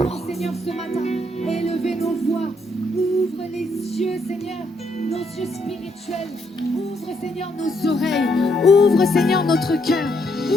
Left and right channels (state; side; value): normal; both; correlation 0.74